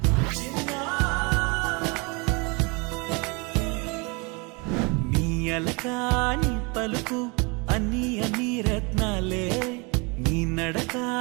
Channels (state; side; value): quieter; left; 29.8 dB